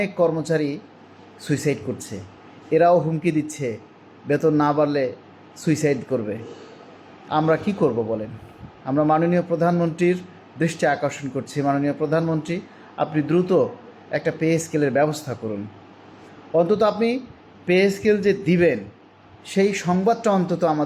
কর্মচারী সুইসাইড করছে। এরাও হুমকি দিচ্ছে বেতন না বাড়লে সুইসাইড করবে। আমরা কি করব বলেন? আমরা মাননীয় প্রধানমন্ত্রীর দৃষ্টি আকর্ষণ করছি। মাননীয় প্রধানমন্ত্রী, আপনি দ্রুত একটা পে স্কেলের ব্যবস্থা করুন। অন্তত আপনি পে স্কেল যে দিবেন সেই সংবাদটা অন্তত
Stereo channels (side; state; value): both; identical; correlation 1.00